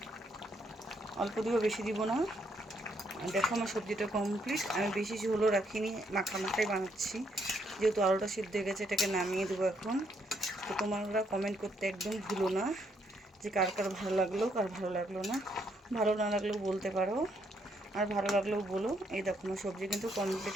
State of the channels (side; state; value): both; normal; correlation 0.73